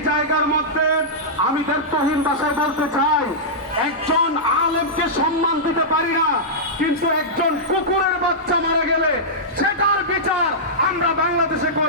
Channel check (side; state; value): both; normal; correlation -0.12